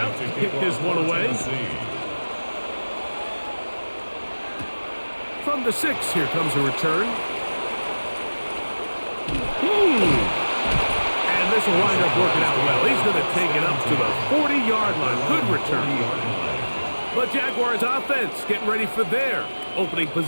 to kick this one away. From the 6, here comes a return. And this will wind up working out well. He's going to take it up to the 40-yard line. Good return. The Jaguars offense getting ready for their opening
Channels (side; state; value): both; inverted; correlation -1.00